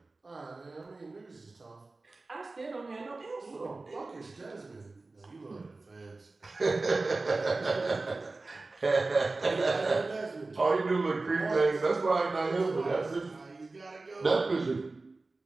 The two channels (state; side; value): quieter; left; 3.4 dB